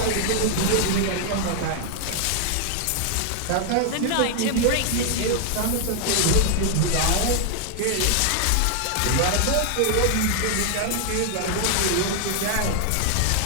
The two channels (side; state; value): both; different; correlation 0.00